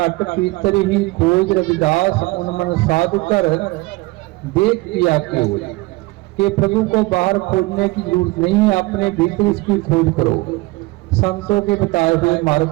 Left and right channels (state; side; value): quieter; left; 22.1 dB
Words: पीतर ही खोज रविदास उन मन साधु कर, देख किया क्यों कि प्रभु को बाहर खोजने की जरूरत नहीं है, अपने भीतर इसकी खोज करो संतों के बताए हुए